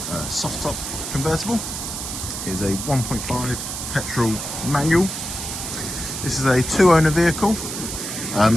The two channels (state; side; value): noise; right; hiss, 6 dB below the sound